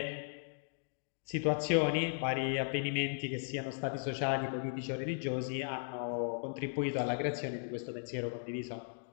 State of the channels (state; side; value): silent; right; digital silence